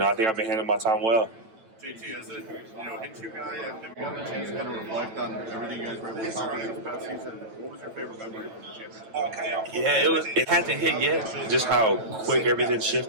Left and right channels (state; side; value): late; left; 9.0 ms